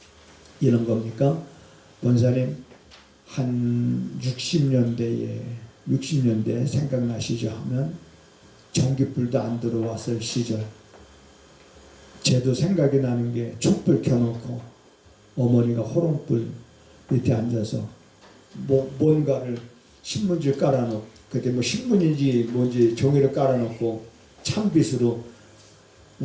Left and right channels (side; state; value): both; identical; correlation 1.00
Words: 이런 겁니까? 권사님 한 60년대에 생각나시죠? 하면 전기불도 안 들어왔을 시절 제도 생각이 나는 게 촛불 켜놓고 어머니가 호롱불 밑에 앉아서 뭔가를 신문지를 깔아놓고 그때 신문인지 뭔지 종이를 깔아놓고 찬빛으로